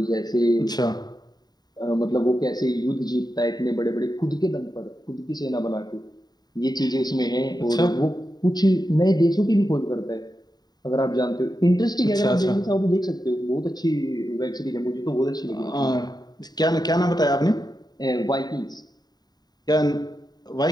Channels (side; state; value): right; late; 0.20 ms